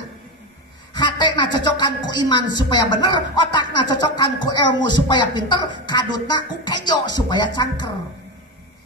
hatena cocokan ku iman supaya bener otakna cocokan ku ilmu supaya pinter kadutna ku kejo supaya cangker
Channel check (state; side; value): normal; both; correlation 0.16